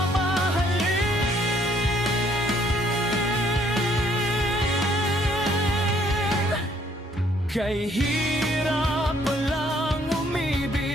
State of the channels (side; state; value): both; normal; correlation 0.65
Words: Kay hirap palang